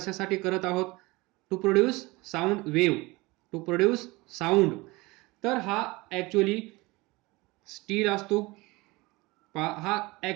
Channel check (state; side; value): quieter; left; 22.8 dB